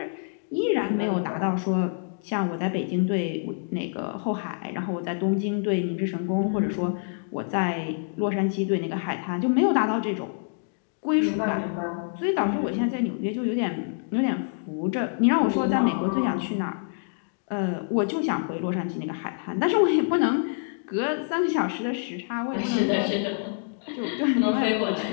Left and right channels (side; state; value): right; silent; digital silence